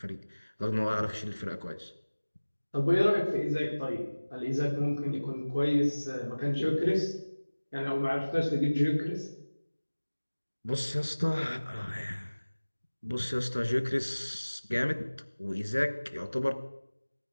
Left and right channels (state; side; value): inverted; both; correlation -1.00